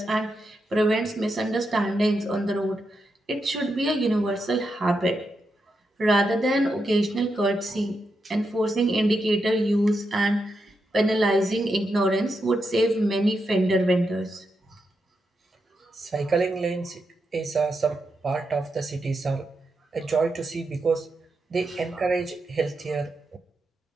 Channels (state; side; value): normal; both; correlation 0.85